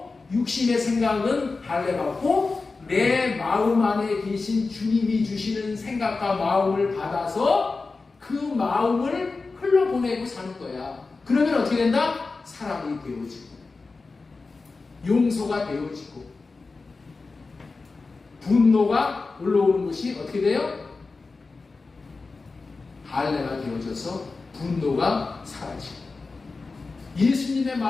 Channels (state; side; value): quieter; right; 4.0 dB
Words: 육신의 생각은 할례받고 내 마음 안에 계신 주님이 주시는 생각과 마음을 받아서 그 마음을 흘러보내고 사는 거야. 그러면 어떻게 된다? 사람이 되어지고 용서가 되어지고 분노가 올라오는 것이 어떻게 돼요? 할례가 되어져서 분노가 사라지고 예수님의